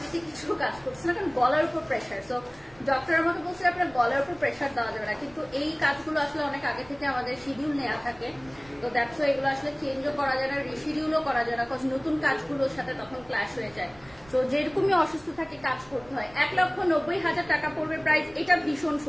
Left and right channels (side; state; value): right; noise; rumble, 25 dB below the sound